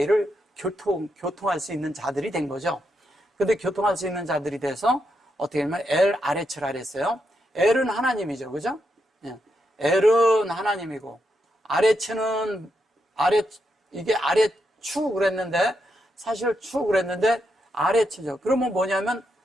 교통할 수 있는 자들이 된 거죠. 근데 교통할 수 있는 자들이 돼서 어떻게 하면 엘 아레츠라 그랬어요. 엘은 하나님이죠. 그죠? 예. 엘은 하나님이고 아레츠는 이게 아레추 그랬는데 사실 추 그랬는데 아레츠죠. 그러면 뭐냐면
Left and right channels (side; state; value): both; normal; correlation 0.82